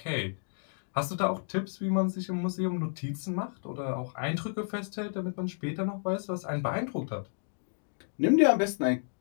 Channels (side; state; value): right; silent; digital silence